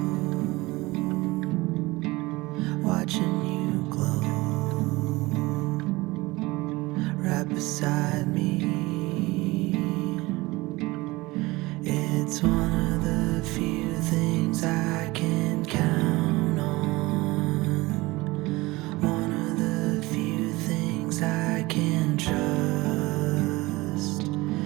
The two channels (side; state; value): left; quieter; 21.3 dB